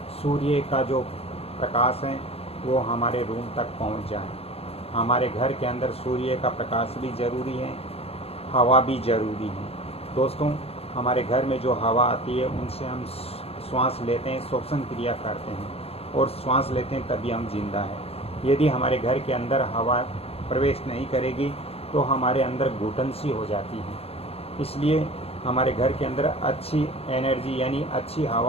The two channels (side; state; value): right; late; 0.29 ms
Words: सूर्य का जो प्रकाश है वो हमारे रूम तक पहुंच जाए। हमारे घर के अंदर सूर्य का प्रकाश भी ज़रूरी है, हवा भी ज़रूरी है। दोस्तों, हमारे घर में जो हवा आती है उनसे हम श्वास लेते हैं, श्वसन क्रिया करते हैं और श्वास लेते हैं तभी हम जिंदा हैं। यदि हमारे घर के अंदर हवा प्रवेश नहीं करेगी तो हमारे अंदर घुटन सी हो जाती है। इसलिए हमारे घर के अंदर अच्छी एनर्जी यानी अच्छी